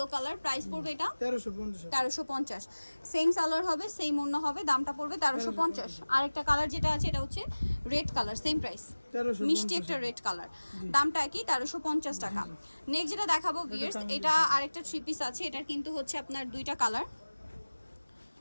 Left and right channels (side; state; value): both; inverted; correlation -1.00